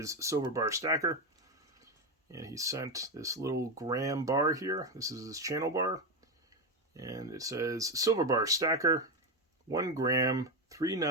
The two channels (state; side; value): normal; both; correlation 0.11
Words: Silver Bar Stacker. And he sent this little gram bar here. This is his channel bar. And it says, Silver Bar Stacker, 1 gram, 3